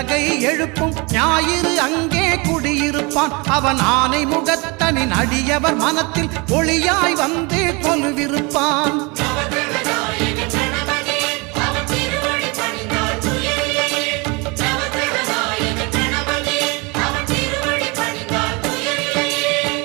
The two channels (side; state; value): left; quieter; 28.1 dB